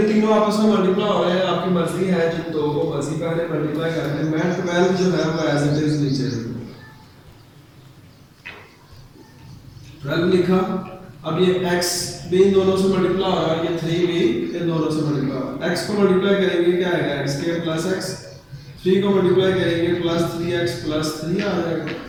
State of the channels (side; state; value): both; identical; correlation 1.00